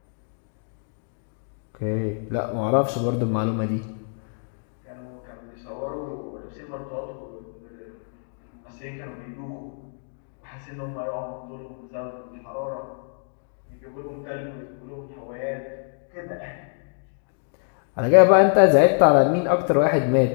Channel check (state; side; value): silent; right; 61 dB below the other